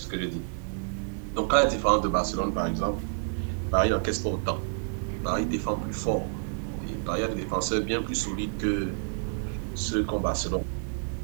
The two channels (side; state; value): left; silent; 59 dB below the other